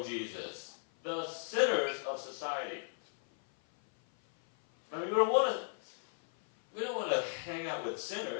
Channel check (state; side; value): silent; right; 54 dB below the other